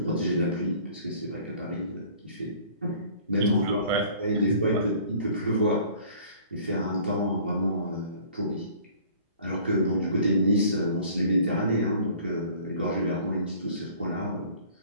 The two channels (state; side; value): inverted; both; correlation -0.51